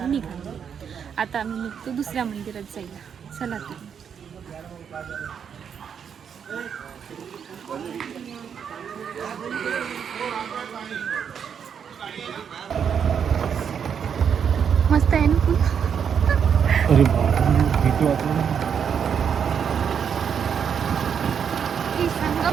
निघा. आता आम्ही निघतो दुसऱ्या मंदिरात जायला. चला तुम्ही. मस्त आहे ना फुल. अरे भीती वाटली. ही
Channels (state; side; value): quieter; left; 7.5 dB